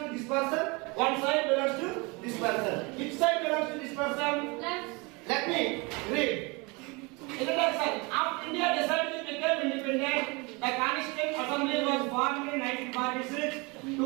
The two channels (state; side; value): quieter; left; 27.6 dB